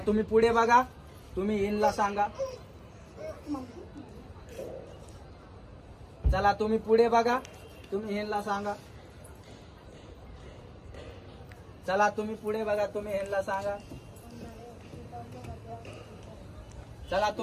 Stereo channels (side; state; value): both; identical; correlation 1.00